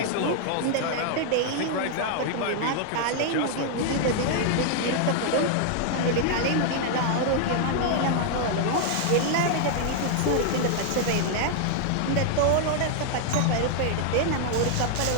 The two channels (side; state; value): both; different; correlation 0.00